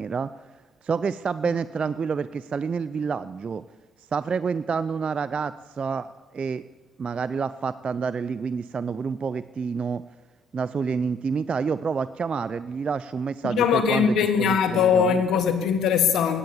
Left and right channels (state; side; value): normal; both; correlation 0.65